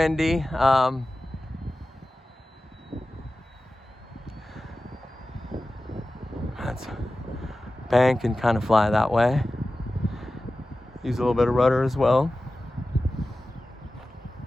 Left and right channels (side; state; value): both; normal; correlation 0.95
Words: Let's bank and kind of fly that way. Use a little bit of rudder as well.